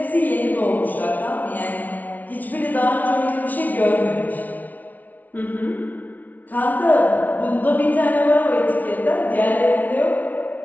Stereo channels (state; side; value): late; right; 0.076 ms